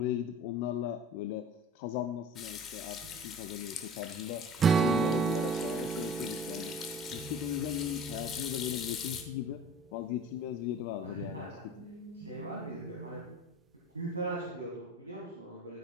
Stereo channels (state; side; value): normal; both; correlation 0.41